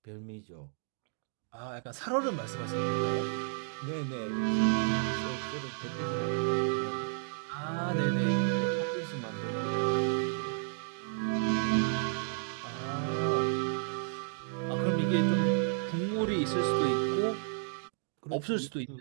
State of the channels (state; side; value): silent; left; 56 dB below the other